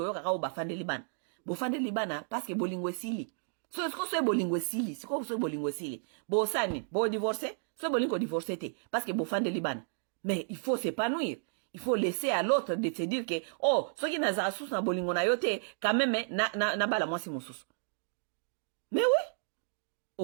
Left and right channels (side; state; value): left; silent; digital silence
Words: kaka bafande libana. Bofande libana parce que bolingo esili. So est-ce que bolingo esili? C'est quoi so bolingo esili? Bo sani, bo divorcer, so bolingo divorcer te parce que bofande libana. Mais il faut s'épanouir. Il faut laisser à l'autre de se dire que oh, ce qui n'a pas sous na bolingo na yote quand même na bala moi si mon sous. Mais oui.